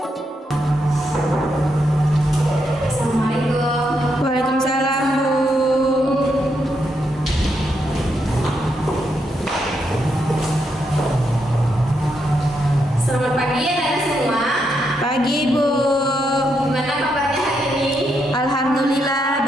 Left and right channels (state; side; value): normal; both; correlation 0.80